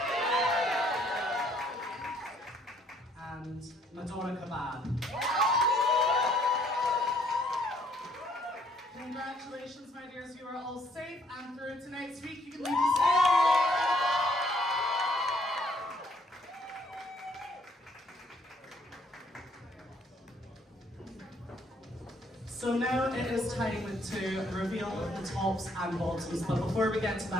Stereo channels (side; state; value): both; normal; correlation 0.65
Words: And Madonna Kebab. Congratulations, my dears, you are all safe, and through tonight's week, you can leave the stage. So now it is time to reveal the tops and bottoms, but before we get to